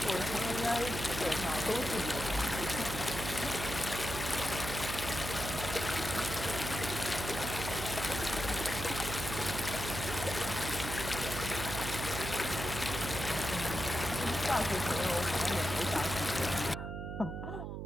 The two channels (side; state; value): right; noise; hum, 5 dB below the sound